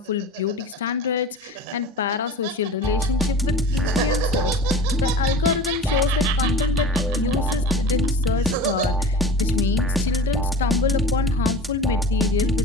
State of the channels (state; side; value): normal; both; correlation 0.37